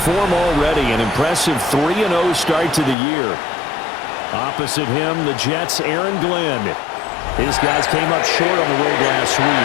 form already, an impressive 3-0 start to the year. Opposite him, the Jets' Aaron Glenn. His guys came up short on the road last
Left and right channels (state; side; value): drops out; right; at 3.0 s